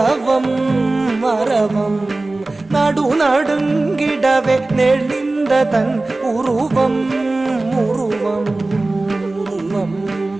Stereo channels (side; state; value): left; quieter; 3.0 dB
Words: அரவம். நடு நடுங்கிடவே நெளிந்ததன் உருவம் உருவம் உருவம்.